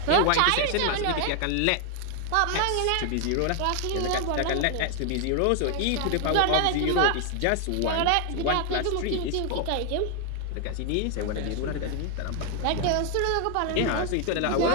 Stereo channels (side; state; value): both; different; correlation 0.00